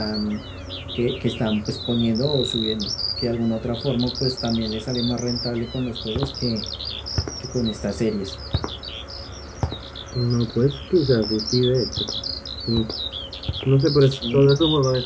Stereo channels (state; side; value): identical; both; correlation 1.00